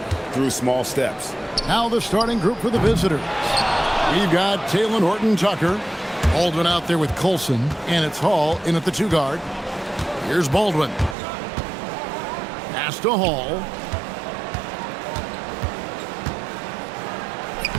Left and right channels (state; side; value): drops out; left; at 11.2 s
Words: through small steps. Now the starting group for the visitors. We've got Taylor Horton-Tucker. Baldwin out there with Colson, and it's Hall in at the 2-guard. Here's Baldwin. Pass to Hall.